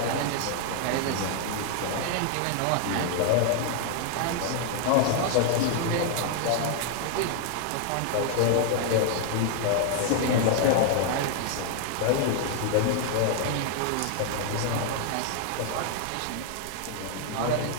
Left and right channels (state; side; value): different; both; correlation 0.00